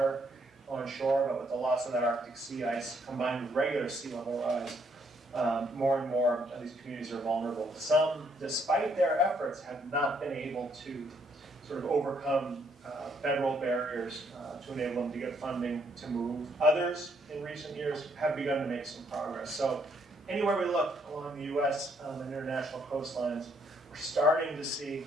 on shore, but with the loss of that Arctic sea ice combined with regular sea level rise, more and more of these communities are vulnerable. Some, despite their efforts, have not been able to sort of overcome federal barriers to enable them to get funding to move. Others in recent years have begun to make some progress. So anywhere we look along the US and international coastlines, we're starting to see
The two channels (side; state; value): both; normal; correlation 0.70